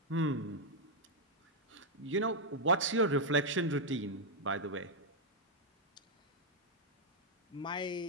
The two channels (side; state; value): both; normal; correlation -0.02